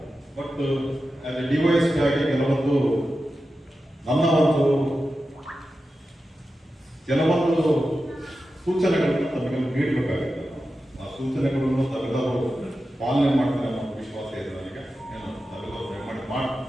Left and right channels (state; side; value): normal; both; correlation 0.92